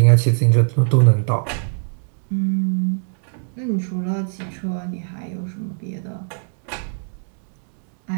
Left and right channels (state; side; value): silent; left; digital silence